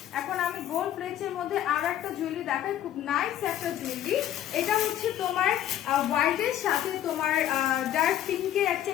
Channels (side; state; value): right; quieter; 11.6 dB